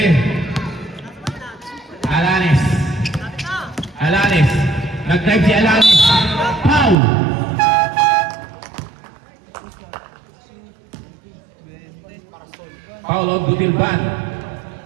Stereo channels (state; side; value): drops out; left; at 7.0 s